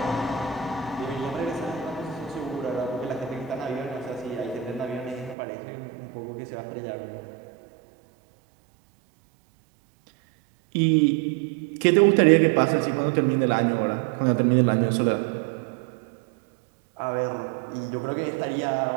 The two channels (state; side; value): drops out; left; at 5.4 s